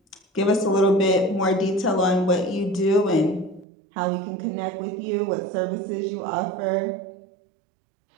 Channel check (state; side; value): drops out; left; at 3.7 s